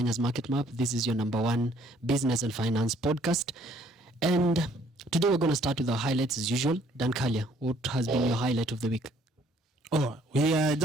Market Map. This is your number one business and finance podcast. And today we're going to start with our highlights as usual. Dan Kalia, what has been your highlight of the week? Oh, we are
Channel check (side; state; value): both; normal; correlation 0.62